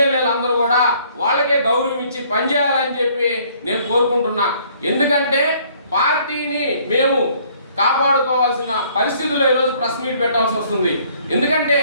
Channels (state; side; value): inverted; both; correlation -0.61